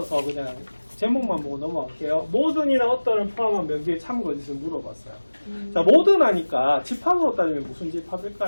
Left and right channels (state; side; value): inverted; both; correlation -1.00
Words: 그냥 제목만 보고 넘어갈게요. 모든이나 어떤을 포함한 명제의 참거짓을 물어봤어요. 자, 모든 하니까 집합으로 따지면 무슨